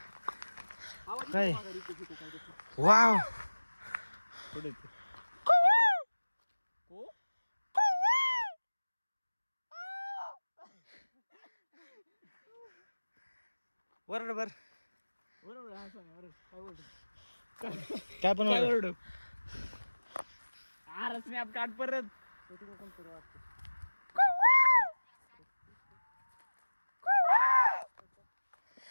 काय वाव वरड बर काय पण वरड. अरे स्नॅप काढ परत.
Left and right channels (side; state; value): both; inverted; correlation -1.00